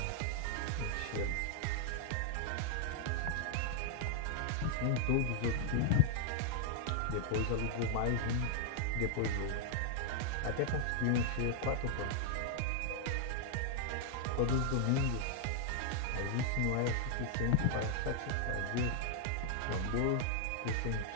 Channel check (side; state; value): both; different; correlation 0.00